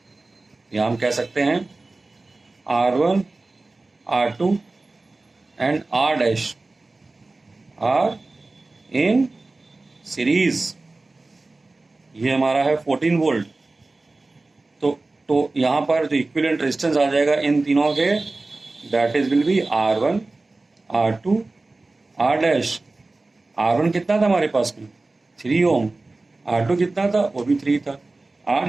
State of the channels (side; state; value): left; quieter; 3.2 dB